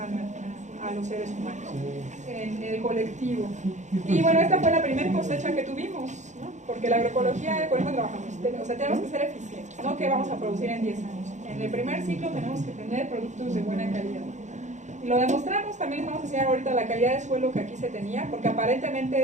a los seres humanos, en el colectivo. Y bueno, esta fue la primera cosecha que tuvimos, ¿no? Porque la agroecología, con eso trabajamos, o sea, tenemos que ser eficientes, no que vamos a producir en 10 años. En el primer ciclo tenemos que tener productos de buena calidad. Y lo demostramos. También vamos a enseñar ahorita la calidad de suelo que aquí se tenía, porque aparentemente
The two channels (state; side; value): late; left; 0.35 ms